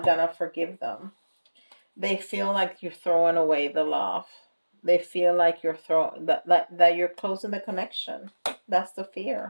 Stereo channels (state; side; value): inverted; both; correlation -1.00